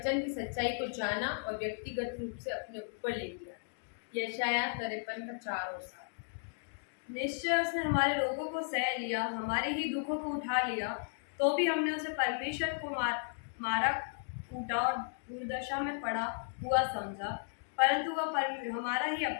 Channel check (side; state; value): right; silent; digital silence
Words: की सच्चाई को जाना और व्यक्तिगत रूप से अपने ऊपर ले लिया। यशायाह 53 का 4 और 7। निश्चय उसने हमारे रोगों को सह लिया, हमारे ही दुखों को उठा लिया, तो भी हमने उसे परमेश्वर को मारा कूटा और दुर्दशा में पड़ा हुआ समझा। परंतु वह हमारा ही